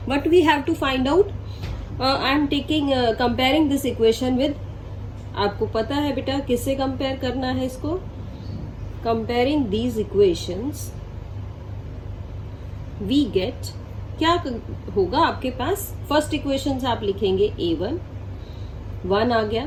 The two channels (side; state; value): both; identical; correlation 1.00